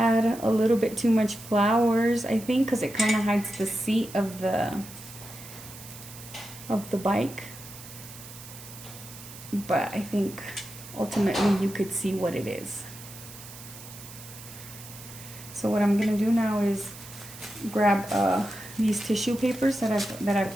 a little bit too much flowers, I think, because it kind of hides the seat of the bike. But I think ultimately you could see what it is. So what I'm gonna do now is grab these tissue papers that I've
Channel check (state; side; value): noise; right; hiss, 15 dB below the sound